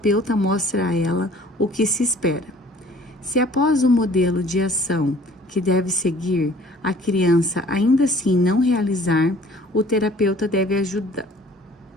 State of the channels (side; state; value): both; normal; correlation 0.52